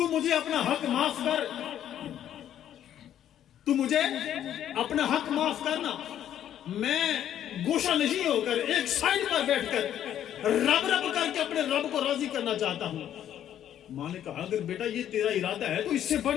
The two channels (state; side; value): quieter; right; 10.7 dB